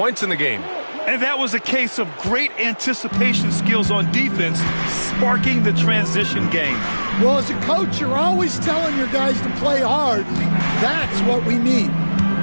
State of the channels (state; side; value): inverted; both; correlation -1.00